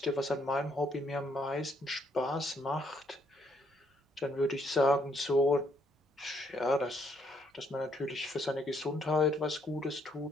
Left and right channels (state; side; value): normal; both; correlation 0.70